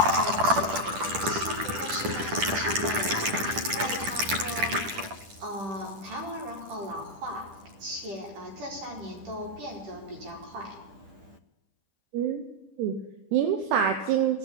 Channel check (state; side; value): late; left; 10 ms